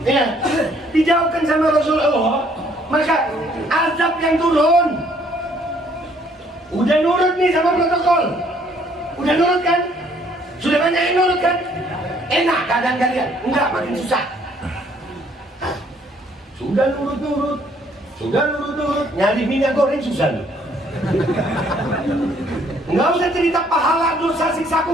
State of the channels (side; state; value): both; normal; correlation 0.63